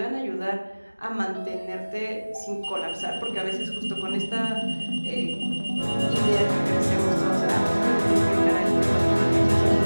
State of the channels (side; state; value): both; inverted; correlation -1.00